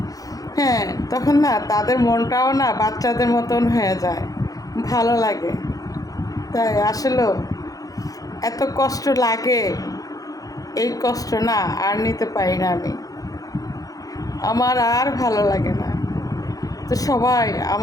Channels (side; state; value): right; late; 0.17 ms